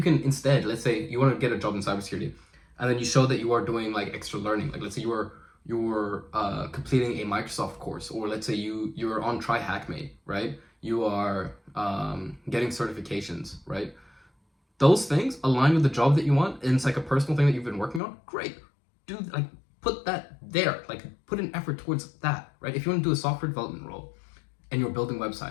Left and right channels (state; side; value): drops out; right; at 18.0 s